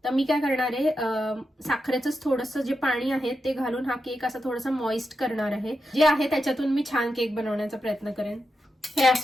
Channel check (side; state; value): both; normal; correlation 0.87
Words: तर मी काय करणार आहे साखरेचंच थोडंसं जे पाणी आहे ते घालून हा केक असा थोडासा मॉइस्ट करणार आहे. जे आहे त्याच्यातून मी छान केक बनवण्याचा प्रयत्न करेन. हे